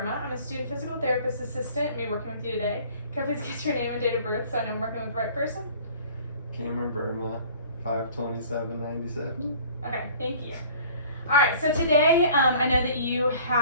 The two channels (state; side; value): inverted; both; correlation -0.48